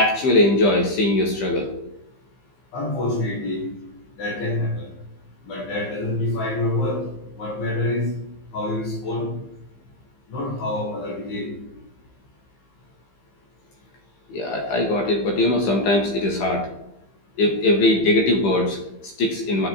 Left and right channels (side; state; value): right; late; 15 ms